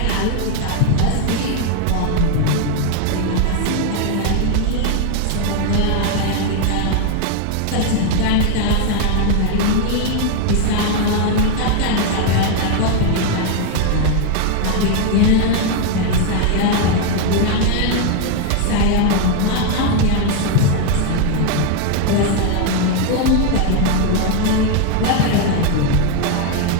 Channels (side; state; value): both; different; correlation 0.01